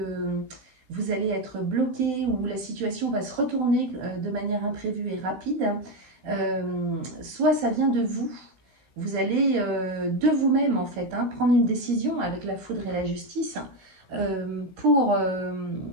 vous allez être bloqué ou la situation va se retourner de manière imprévue et rapide. Soit ça vient de vous. Vous allez de vous-même en fait hein, prendre une décision avec la foudre et la justice pour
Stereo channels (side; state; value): left; late; 16 ms